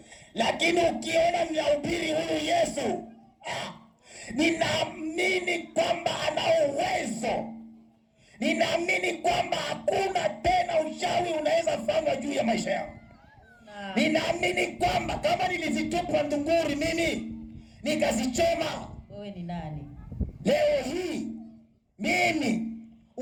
Lakini ukiona ninahubiri huyu Yesu, ninaamini kwamba ana uwezo. Ninaamini kwamba hakuna tena uchawi unaweza fanywa juu ya maisha yangu. Ninaamini kwamba kama nilizitupa ndunguri mimi nikazichoma, Wewe ni nani? leo hii mimi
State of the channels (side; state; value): both; identical; correlation 1.00